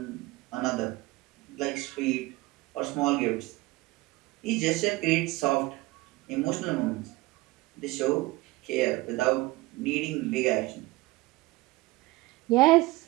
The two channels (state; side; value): quieter; left; 20.5 dB